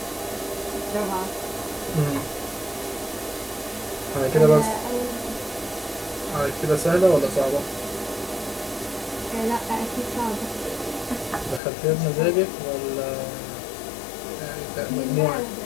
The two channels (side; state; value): right; drops out; at 11.6 s